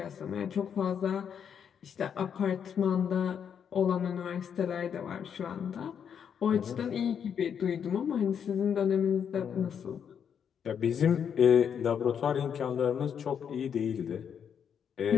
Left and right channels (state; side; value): quieter; right; 7.8 dB